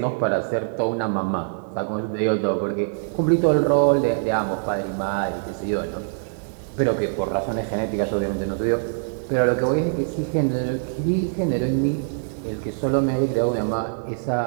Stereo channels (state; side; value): silent; left; 58 dB below the other